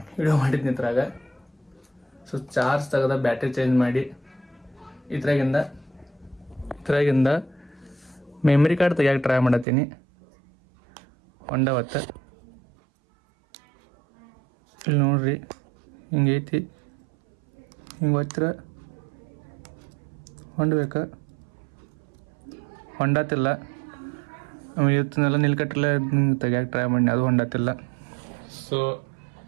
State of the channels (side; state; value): left; drops out; at 9.7 s